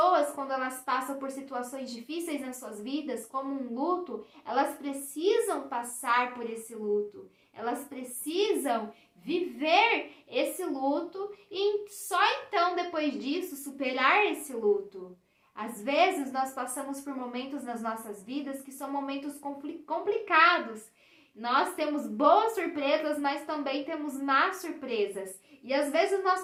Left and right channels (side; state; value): both; identical; correlation 1.00